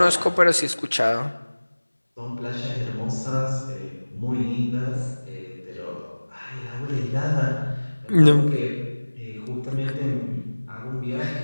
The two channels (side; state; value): both; inverted; correlation -1.00